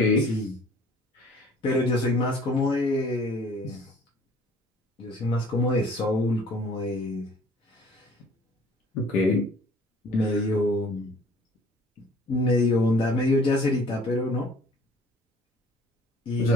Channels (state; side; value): normal; both; correlation 0.53